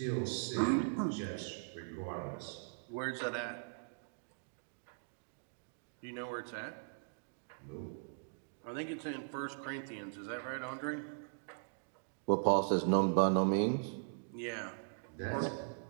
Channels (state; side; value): silent; left; digital silence